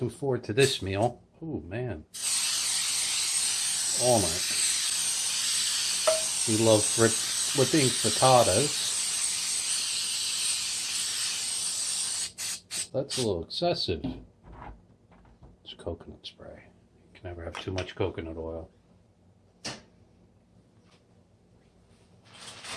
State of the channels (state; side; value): identical; both; correlation 1.00